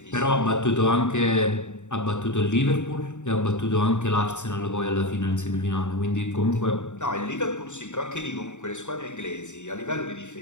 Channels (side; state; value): right; late; 0.84 ms